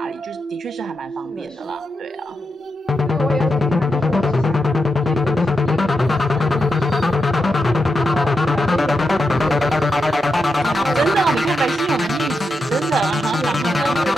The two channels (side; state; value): both; normal; correlation 0.86